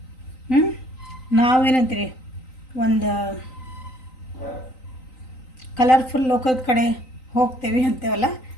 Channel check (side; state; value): right; late; 3.9 ms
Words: ನಾವೇನಂತೀರಿ, ಒಂದು ಕಲರ್ಫುಲ್ ಲೋಕದ ಕಡೆ ಹೋಗ್ತೇವೆ ಅಂತೇವಲ್ಲ,